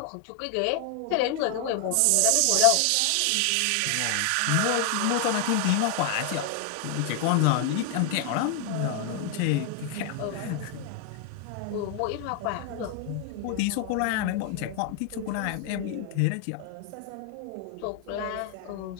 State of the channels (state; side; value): different; both; correlation 0.00